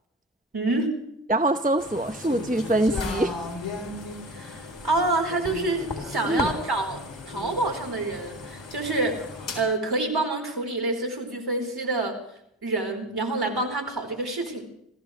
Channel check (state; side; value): normal; both; correlation 0.30